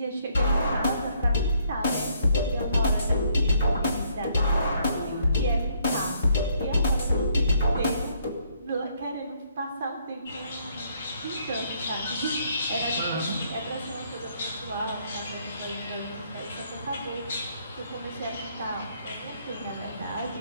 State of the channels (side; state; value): both; inverted; correlation -0.69